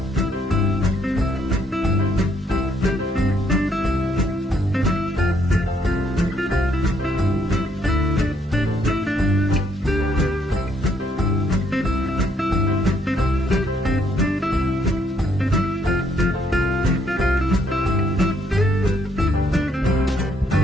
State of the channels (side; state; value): both; normal; correlation 0.70